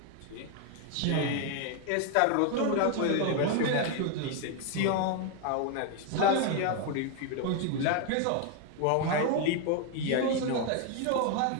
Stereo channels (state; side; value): different; both; correlation 0.01